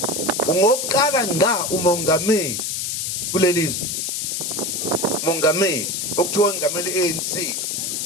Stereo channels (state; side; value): noise; left; hiss, 2 dB below the sound